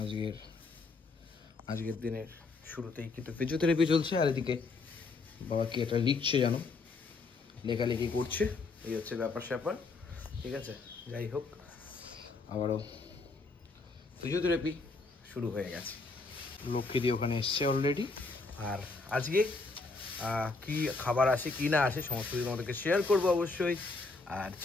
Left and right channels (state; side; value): quieter; right; 3.8 dB